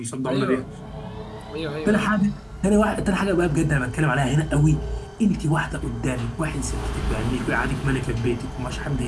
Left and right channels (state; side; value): identical; both; correlation 1.00